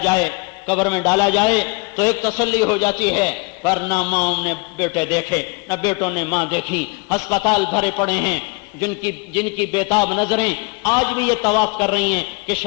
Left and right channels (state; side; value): quieter; right; 30.6 dB